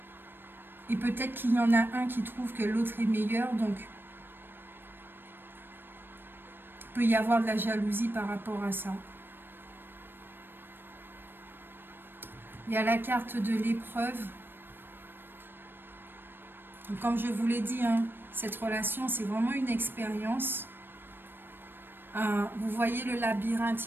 Et peut-être qu'il y en a un qui trouve que l'autre est meilleur, donc peut y avoir de la jalousie par rapport à ça. Il y a la carte de l'épreuve. Comme je vous l'ai dit, hein, cette relation, c'est vraiment une expérience. Vous voyez le labyrinthe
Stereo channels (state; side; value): late; left; 0.097 ms